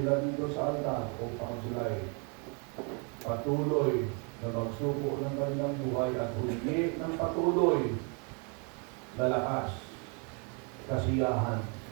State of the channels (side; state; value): left; quieter; 35.9 dB